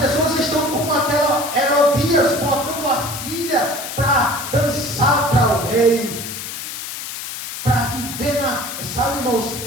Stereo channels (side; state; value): left; noise; hiss, 8 dB below the sound